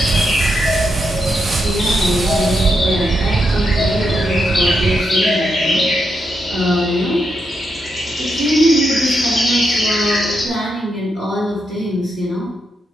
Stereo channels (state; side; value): normal; both; correlation 0.83